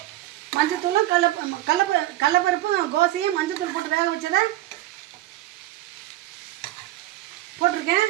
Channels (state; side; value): quieter; left; 15.5 dB